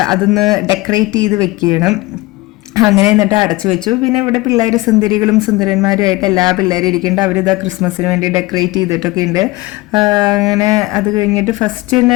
അതൊന്ന് ഡെക്കറേറ്റ് ചെയ്ത് വെക്കണം. അങ്ങനെ എന്നിട്ട് അടച്ചു വെച്ചു. പിന്നെ ഇവിടെ പിള്ളേർ സുന്ദരികളും സുന്ദരന്മാരുമായിട്ട് എല്ലാ പിള്ളേരും ഇരിക്കുന്നുണ്ട്. അവരിതാ ക്രിസ്മസിന് വേണ്ടി ഡെക്കറേറ്റ് ചെയ്തിട്ടൊക്കെ ഉണ്ട്. അങ്ങനെ അത് കഴിഞ്ഞിട്ട് ഫസ്റ്റ് തന്നെ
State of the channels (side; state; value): right; quieter; 20.8 dB